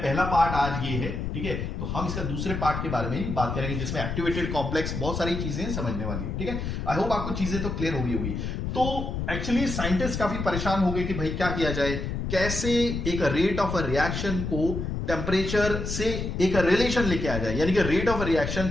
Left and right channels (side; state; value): left; noise; rumble, 4 dB below the sound